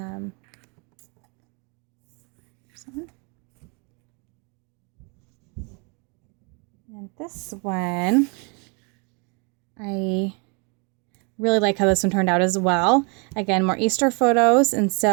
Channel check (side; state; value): left; quieter; 33.7 dB